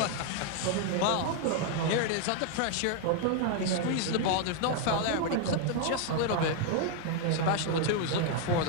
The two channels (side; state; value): both; different; correlation 0.00